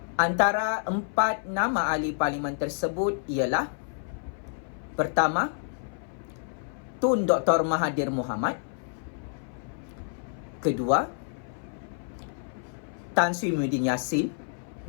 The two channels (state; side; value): silent; right; 57 dB below the other